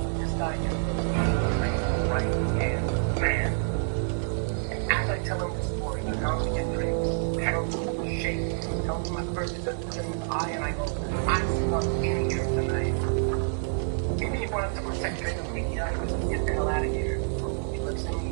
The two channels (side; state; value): left; silent; digital silence